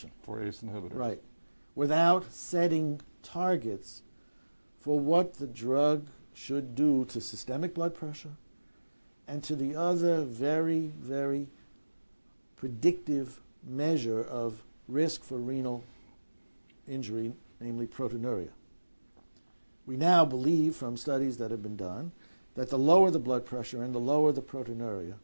For ACE inhibitors. Right. Without setting targets for what the drug should do to systemic blood pressure and to the other very, very predictive measure of risk for renal injury, namely proteinuria. We now believe from studies that have been done that the lower the blood pressure and the lower the proteinuria,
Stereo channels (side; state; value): both; inverted; correlation -1.00